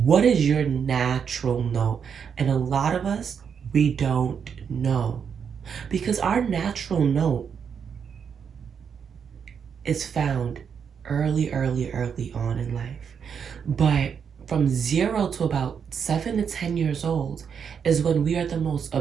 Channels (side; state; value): left; quieter; 7.0 dB